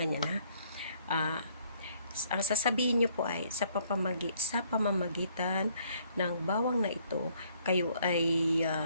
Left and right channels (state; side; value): inverted; both; correlation -0.64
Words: ang sasabihin nyo po ay sa pamamagitan ng bawang na ito, kayo ay